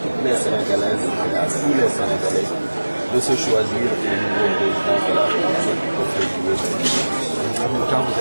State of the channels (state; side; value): inverted; both; correlation -1.00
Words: les Sénégalaises et à tous les Sénégalais de se choisir le nouveau président de la République pour février 2020. En même temps, vous